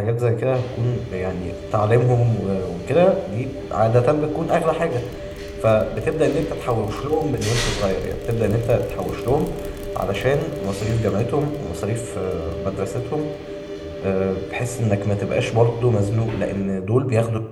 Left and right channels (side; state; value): both; identical; correlation 1.00